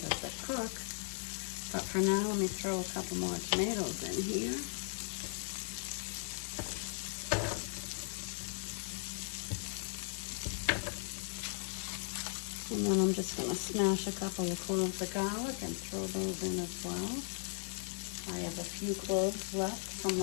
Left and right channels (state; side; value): silent; right; 53 dB below the other